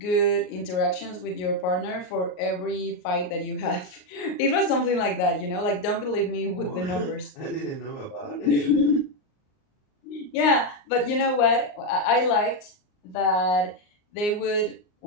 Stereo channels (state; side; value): late; right; 38 ms